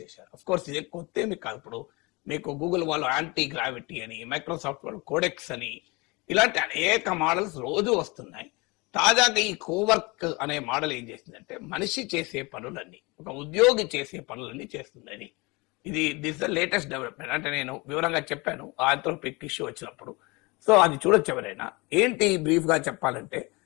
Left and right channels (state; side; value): quieter; right; 26.0 dB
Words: అఫ్ కోర్స్ ఇది కొత్త ఏమి కాదు. ఇప్పుడు మీకు గూగుల్ వాళ్ళు యాంటీ గ్రావిటీ అని, మైక్రోసాఫ్ట్ వాళ్ళు కోడెక్స్ అని, ఇలాంటి అనేక మోడల్స్ రోజు వస్తున్నాయి. తాజాగా ఈ కోవర్క్ అనే మోడల్ ఏం చేసిందంటే, మనిషి చేసే పనులన్నీ, ఒక ఉద్యోగి చేసే పనులన్నీ చేస్తుందని. This the latest development. అంటే నేను వివరంగా చెప్పాను ఆంథ్రోపిక్ ఇష్యూ వచ్చినప్పుడు. సో అది చూడొచ్చు ఎవరైనా. ఏంటి బ్రీఫ్గా చెప్పాలంటే,